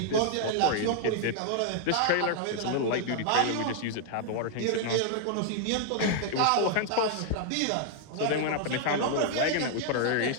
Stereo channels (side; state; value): both; different; correlation -0.01